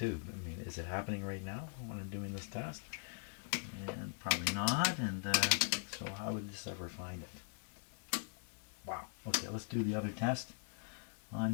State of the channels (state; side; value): silent; right; digital silence